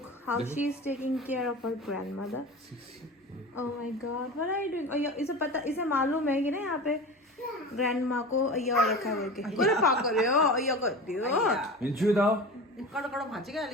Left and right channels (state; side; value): normal; both; correlation 0.32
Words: how she is taking care of her grandmother. Oh my God, what are you doing? और इसे पता, इसे मालूम है कि ना यहाँ पे ग्रैंडमा को अय्या और रखा है बोल के। करे पा करे हो अय्या करती हो। मिंचू दाओ। कड़ो कड़ो भाजी का